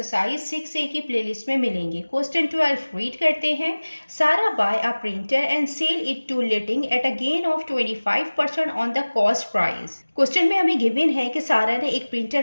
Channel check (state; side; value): inverted; both; correlation -1.00